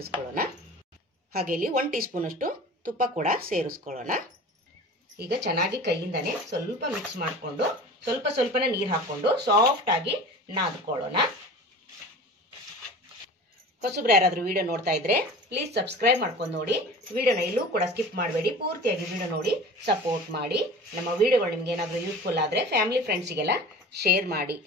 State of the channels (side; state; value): both; normal; correlation 0.38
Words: ಹಾಗೆ ಇಲ್ಲಿ 1 ಟೀ ಸ್ಪೂನ್ ಅಷ್ಟು ತುಪ್ಪ ಕೂಡ ಸೇರಿಸ್ಕೊಳ್ಳೋಣ. ಈಗ ಚೆನ್ನಾಗಿ ಕೈಯಿಂದಾನೆ ಸ್ವಲ್ಪ ಮಿಕ್ಸ್ ಮಾಡಿಕೊಂಡು ಸ್ವಲ್ಪನೇ ನೀರು ಹಾಕೊಂಡು ಸಾಫ್ಟ್ ಆಗಿ ನಾದ್ಕೊಳ್ಳೋಣ. ಹೊಸಬ್ರು ಯಾರಾದ್ರೂ ವಿಡಿಯೋ ನೋಡ್ತಾ ಇದ್ರೆ ಪ್ಲೀಸ್ ಸಬ್ಸ್ಕ್ರೈಬ್ ಮಾಡ್ಕೊಂಡು ನೋಡಿ. ವಿಡಿಯೋನ ಎಲ್ಲೂ ಕೂಡ ಸ್ಕಿಪ್ ಮಾಡಬೇಡಿ. ಪೂರ್ತಿಯಾಗಿ ವಿಡಿಯೋ ನೋಡಿ ಸಪೋರ್ಟ್ ಮಾಡಿ. ನಮ್ಮ ವಿಡಿಯೋಗಳು ನಿಮ್ಗೆ ಏನಾದರೂ ಯೂಸ್ಫುಲ್ ಆದ್ರೆ ಫ್ಯಾಮಿಲಿ ಫ್ರೆಂಡ್ಸಿಗೆಲ್ಲ ಶೇರ್ ಮಾಡಿ.